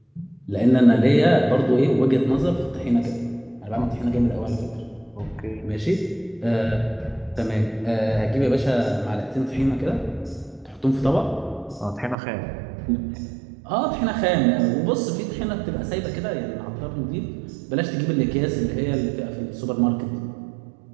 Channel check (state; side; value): drops out; left; at 12.2 s